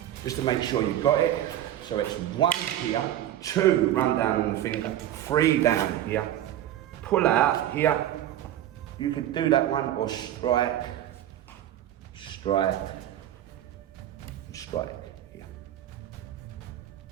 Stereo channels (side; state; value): left; quieter; 12.2 dB